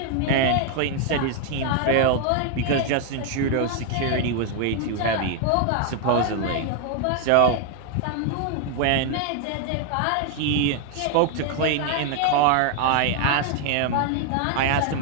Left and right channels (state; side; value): different; both; correlation 0.00